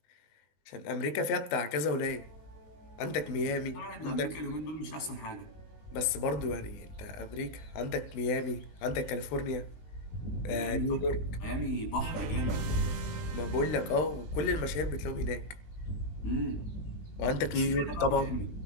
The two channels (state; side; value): late; right; 20 ms